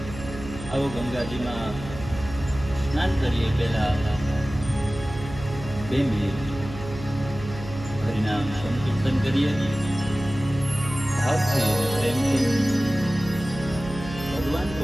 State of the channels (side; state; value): right; noise; hum, 11 dB below the sound